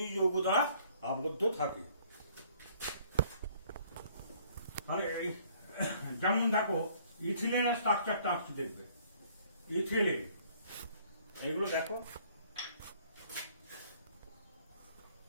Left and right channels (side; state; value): both; inverted; correlation -0.59